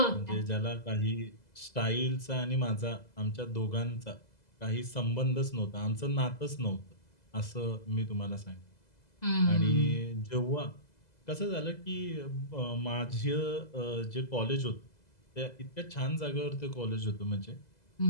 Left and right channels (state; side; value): late; right; 2.0 ms